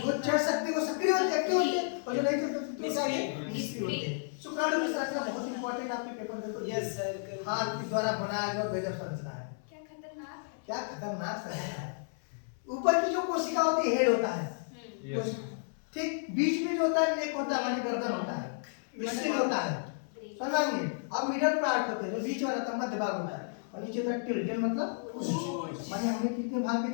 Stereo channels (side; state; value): right; silent; 55 dB below the other